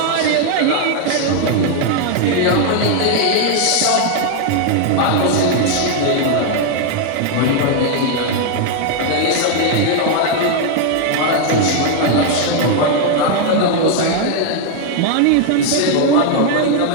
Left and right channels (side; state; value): both; different; correlation 0.00